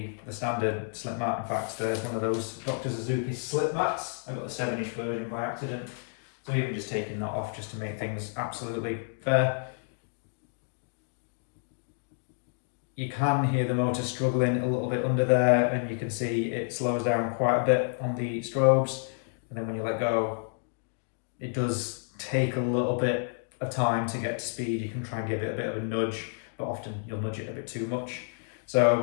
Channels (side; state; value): right; silent; digital silence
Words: standard slip mat. In fact, there's one of those Dr. Suzuki slip mats. I got the 7-inch version by accident. So even just taking that off just to make things absolutely fair. You can hear the motor struggling a little bit under there, and you can see it slows down quite a bit on the strobes. And then when you let go, it does take a little bit of time to get to speed. You can try and give it a bit of a nudge, but often you'll nudge it a bit too much.